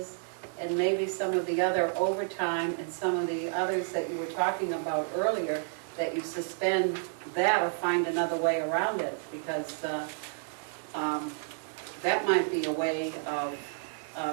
and maybe some of the other overtime and some of the others that you were talking about earlier, that you suspend that or find another way around it, because that might be a way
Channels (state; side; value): silent; left; 57 dB below the other